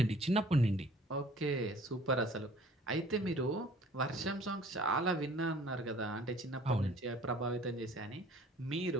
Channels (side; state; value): both; normal; correlation 0.52